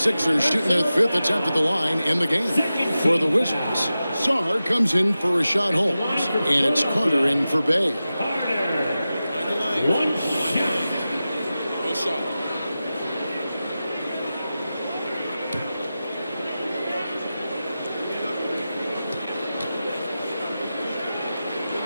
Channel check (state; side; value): inverted; both; correlation -0.94